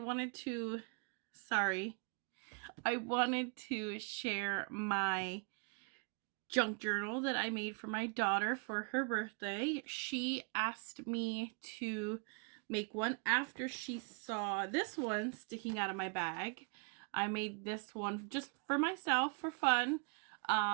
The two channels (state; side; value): quieter; left; 37.7 dB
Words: to, sorry, I wanted to share my junk journal that I made for my daughter for her birthday. She asked me to make one after she saw this one sticking out of my bag. I made this one just for myself for fun.